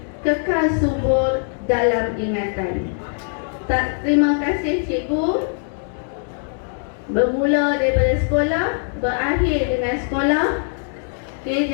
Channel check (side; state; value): right; silent; 65 dB below the other